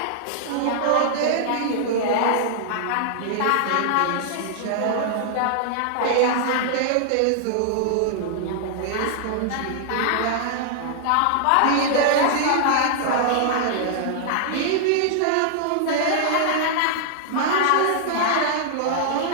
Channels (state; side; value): different; both; correlation -0.01